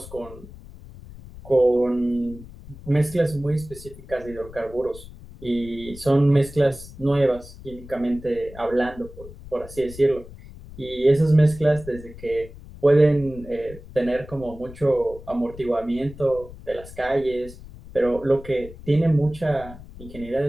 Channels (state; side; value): noise; left; rumble, 17 dB below the sound